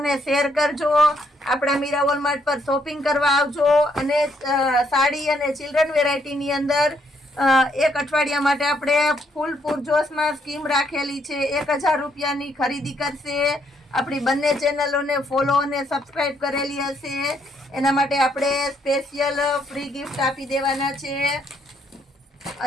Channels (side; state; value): both; normal; correlation 0.72